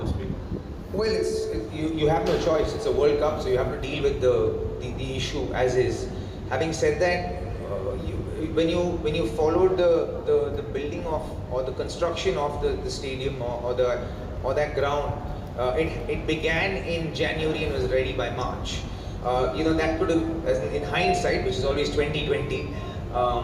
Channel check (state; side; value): identical; both; correlation 1.00